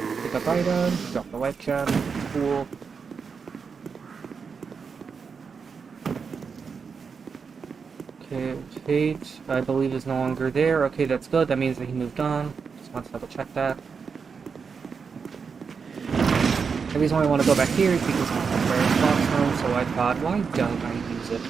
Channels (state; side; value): quieter; left; 5.7 dB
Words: Pick up item, drop the life gem, cool. Okay, Fate, I believe is no longer there. Okay, that's good, that means that he moved on. Just want to double check that. The reason why I want to go back here is because it's a rare spot zone, so I thought, why don't I use it?